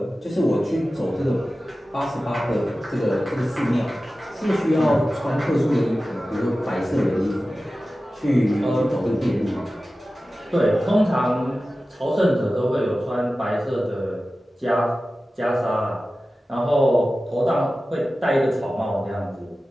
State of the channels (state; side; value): normal; both; correlation 0.95